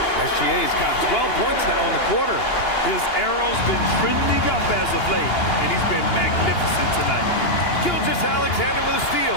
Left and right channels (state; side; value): late; right; 2.8 ms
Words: SGA's got 12 points now in the quarter. His arrow's been trending up as of late, and he's been magnificent tonight. Gilgeous-Alexander with a